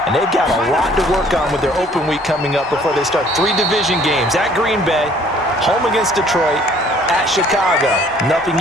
And they've got a lot to work on with their open week coming up before they start 3 division games at Green Bay, home against Detroit, at Chicago. Nothing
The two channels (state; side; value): normal; both; correlation 0.57